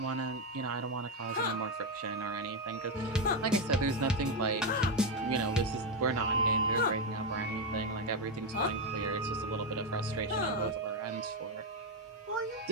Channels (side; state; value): both; normal; correlation 0.06